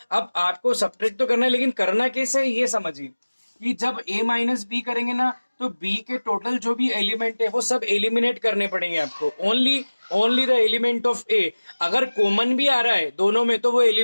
अब आपको सब्ट्रैक्ट तो करना है, लेकिन करना कैसे है ये समझिए कि जब a माइनस बी करेंगे ना तो b के टोटल जो भी एलिमेंट है वो सब एलिमिनेट करने पड़ेंगे आपको। Only the element of a, अगर कॉमन भी आ रहा है दोनों में तो वो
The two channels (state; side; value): inverted; both; correlation -1.00